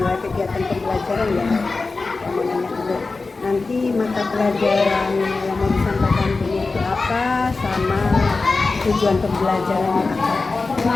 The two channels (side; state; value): right; quieter; 3.8 dB